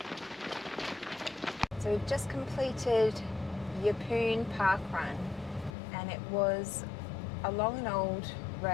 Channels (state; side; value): drops out; right; at 5.8 s